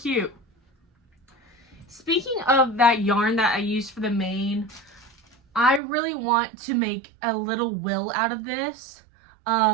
Speaking of that yarn that I used for the mane, I really want to make a little will out of this.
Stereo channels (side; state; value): left; drops out; at 5.8 s